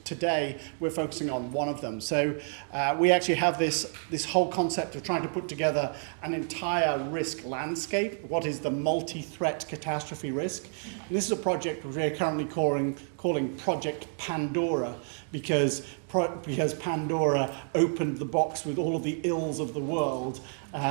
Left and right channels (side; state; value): left; silent; 58 dB below the other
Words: today we're focusing on one of them. So we actually have this whole concept of trying to put together an entire risk landscape. What is the multi-threat catastrophe risk? And this is a project we're currently calling Project Pandora, because Pandora opened the box with all of the ills of the world,